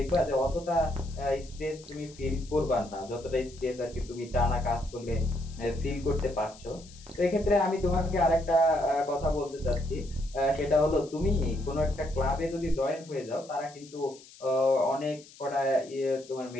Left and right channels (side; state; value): left; noise; hiss, 21 dB below the sound